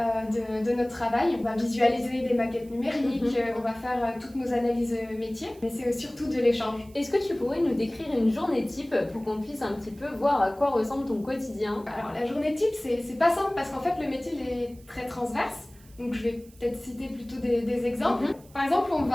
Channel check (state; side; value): noise; right; hiss, 26 dB below the sound